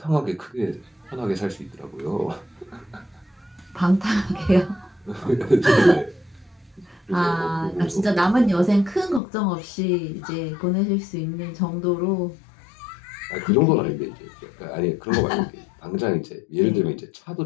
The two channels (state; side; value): drops out; right; at 9.2 s